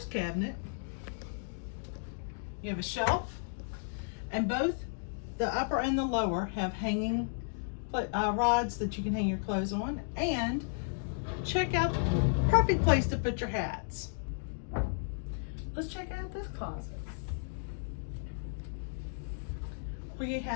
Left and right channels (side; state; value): right; silent; digital silence